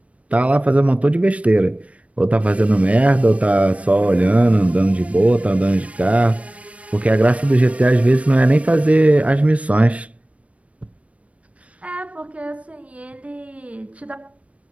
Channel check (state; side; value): late; left; 0.065 ms